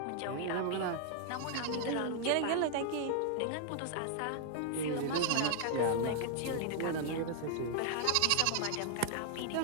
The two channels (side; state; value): both; different; correlation 0.00